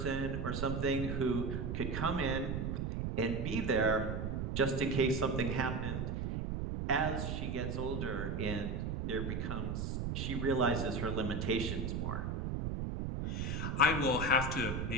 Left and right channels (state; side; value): noise; right; rumble, 2 dB below the sound